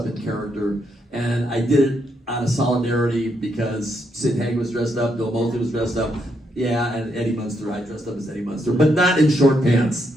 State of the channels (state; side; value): normal; both; correlation 0.78